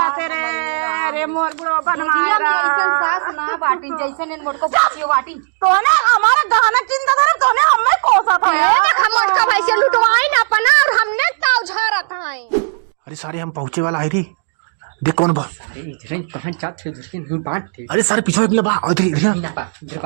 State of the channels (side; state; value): left; silent; digital silence